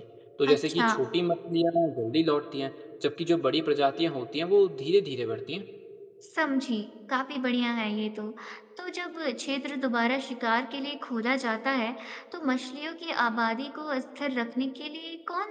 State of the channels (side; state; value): both; identical; correlation 1.00